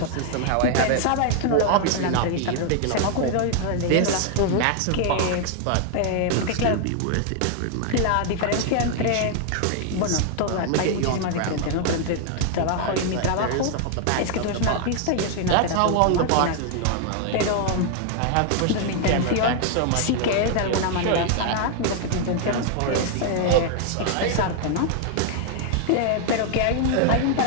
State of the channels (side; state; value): both; different; correlation 0.00